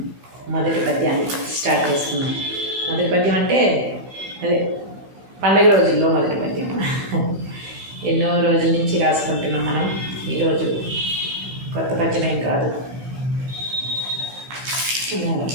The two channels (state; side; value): late; left; 16 ms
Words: మొదటి పద్యాన్ని స్టార్ట్ చేస్తున్నాం. మొదటి పద్యం అంటే అదే పండగ రోజుల్లో మొదటి పద్యం. ఎన్నో రోజుల నుంచి రాసుకుంటున్నాం మనం. ఈరోజు కొత్త పద్యం ఏం కాదు.